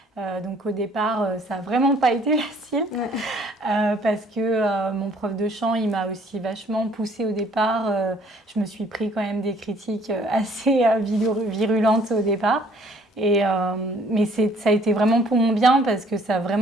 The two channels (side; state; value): both; normal; correlation 0.60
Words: Donc au départ, ça n'a vraiment pas été facile parce que mon prof de chant, il m'a aussi vachement poussée au départ. Je me suis pris quand même des critiques assez virulentes au départ. Mais ça a été vraiment pour mon bien parce que ça a